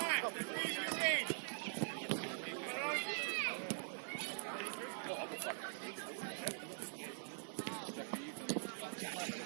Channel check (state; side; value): silent; left; digital silence